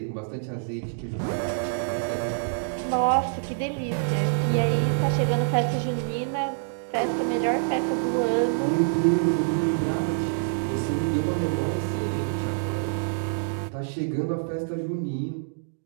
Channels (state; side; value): silent; left; digital silence